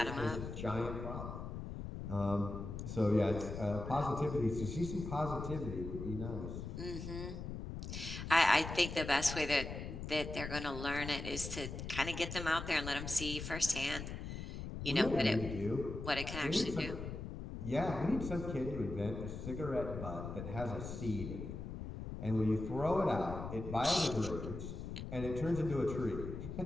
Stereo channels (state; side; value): noise; left; rumble, 7 dB below the sound